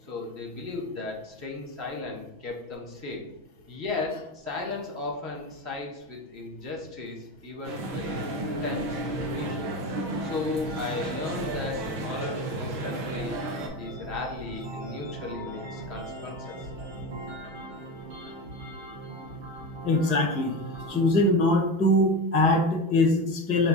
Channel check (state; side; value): late; left; 6.2 ms